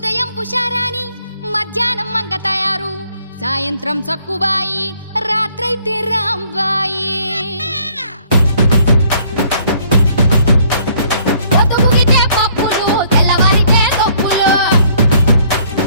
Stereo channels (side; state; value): both; inverted; correlation -0.62